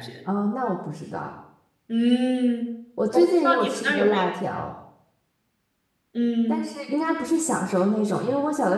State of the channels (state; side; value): identical; both; correlation 1.00